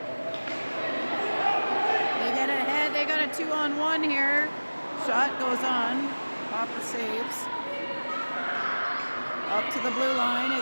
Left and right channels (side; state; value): both; inverted; correlation -1.00